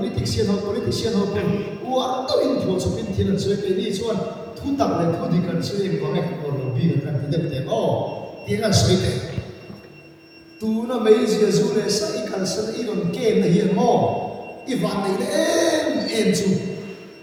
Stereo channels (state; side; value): identical; both; correlation 1.00